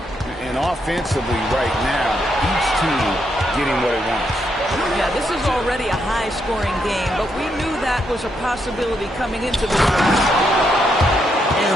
And off defensively right now. Each team getting what it wants. Yeah, this is already a high-scoring game, but we knew that was a possibility coming into this one. And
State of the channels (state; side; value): normal; both; correlation 0.79